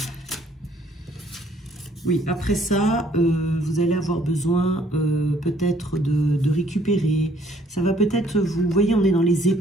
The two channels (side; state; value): both; normal; correlation 0.62